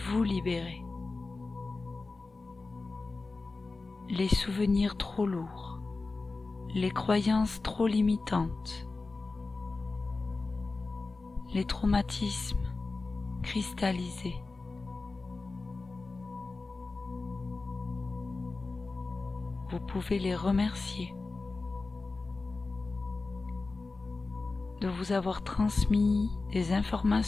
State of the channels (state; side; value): quieter; right; 3.7 dB